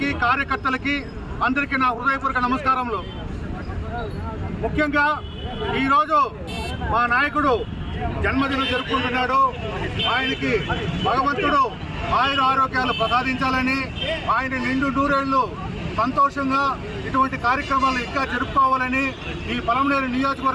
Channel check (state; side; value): identical; both; correlation 1.00